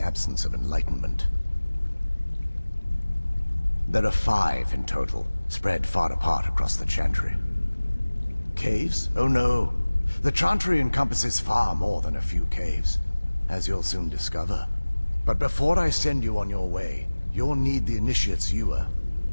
of enlightenment. There are 5 in total, spread far apart across the Chantry. Caves? Oh no. The Chantry encompasses far more than a few caves, as you'll soon discover. But before I send you on your way, you'll need the initiate's ewer.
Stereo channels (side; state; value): both; inverted; correlation -1.00